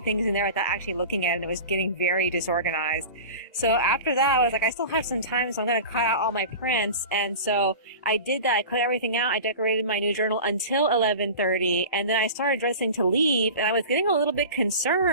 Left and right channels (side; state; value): both; inverted; correlation -0.34